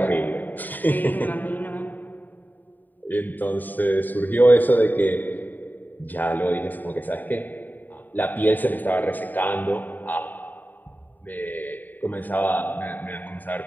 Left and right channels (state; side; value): late; right; 0.088 ms